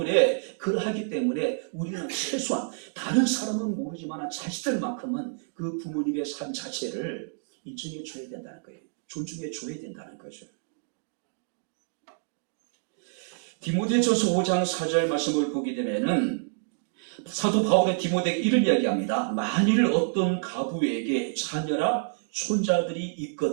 그러하기 때문에 우리는 최소한 다른 사람은 모르지만 자식들만큼은 그 부모님의 삶 자체를 인정해 줘야 된다는 거예요. 존중해 줘야 된다는 거죠. 디모데전서 5장 4절 말씀을 보게 되면은 사도 바울의 디모데에게 이런 이야기합니다. 만일 어떤 가부에게 자녀나 손자들이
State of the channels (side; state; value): left; silent; digital silence